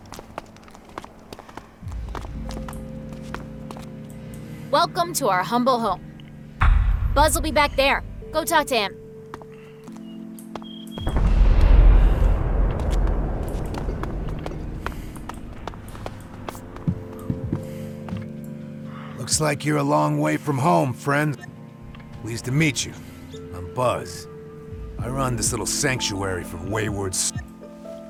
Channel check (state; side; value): identical; both; correlation 1.00